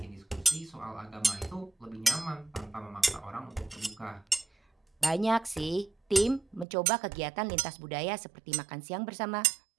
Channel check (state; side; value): drops out; left; at 6.7 s